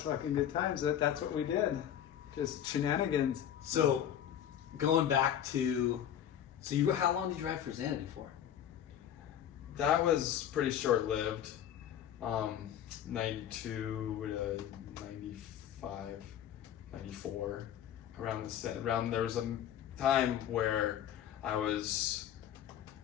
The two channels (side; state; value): right; quieter; 10.2 dB